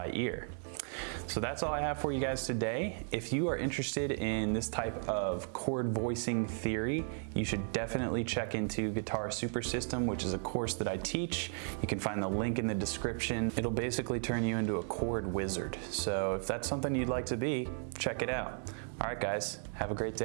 ear. So that's all I have for you guys today. If you are interested in this type of chord voicing theory, you should definitely check into Guitar Super System, which is a course that I teach. You can find the link in the description. It'll basically turn you into a chord wizard. So if that's something you'd like to be, check it out. All right, guys, have a great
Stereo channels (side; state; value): left; silent; 54 dB below the other